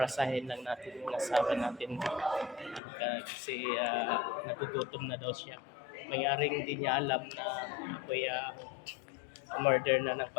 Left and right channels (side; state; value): right; drops out; at 2.8 s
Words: lang natin yung asawa natin kasi nagugutom na daw siya. Mayroong hindi niya alam na ako'y umorder na ng